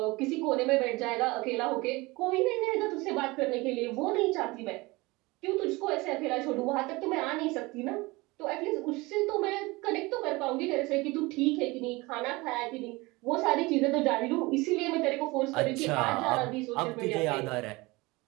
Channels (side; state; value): left; quieter; 22.9 dB